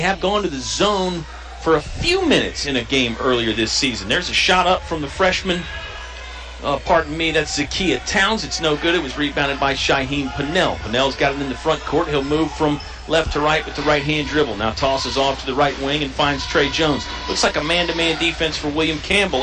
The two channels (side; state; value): both; identical; correlation 1.00